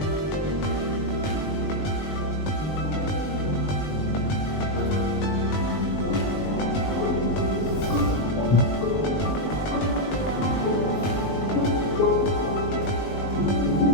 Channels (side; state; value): right; late; 20 ms